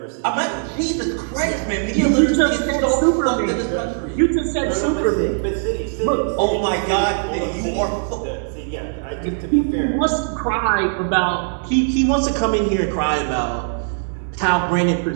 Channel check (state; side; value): silent; left; digital silence